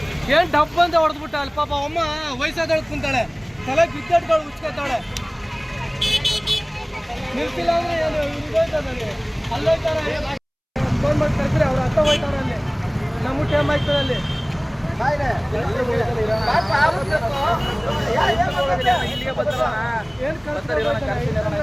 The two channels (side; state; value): both; identical; correlation 1.00